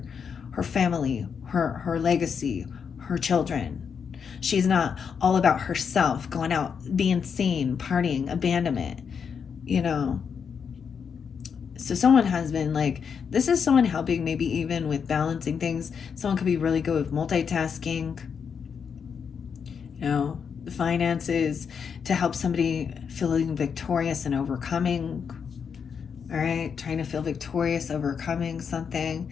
family, her legacy, her children. She's not all about herself, going out, being seen, partying, abandonment, So someone has been like, this is someone helping maybe even with balancing things. Someone could be really good with multitasking, the finances, to help somebody feeling victorious and overcoming. All right, trying to feel victorious, overcoming something.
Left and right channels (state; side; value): quieter; right; 6.6 dB